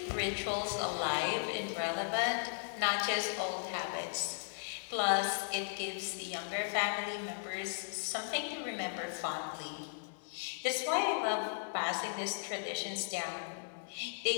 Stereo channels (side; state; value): right; silent; digital silence